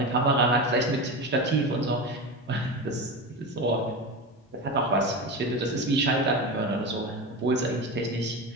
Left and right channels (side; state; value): both; normal; correlation 0.23